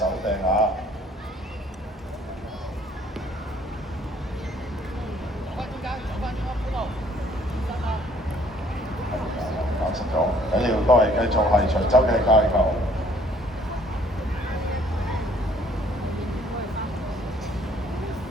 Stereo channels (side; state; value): both; normal; correlation 0.60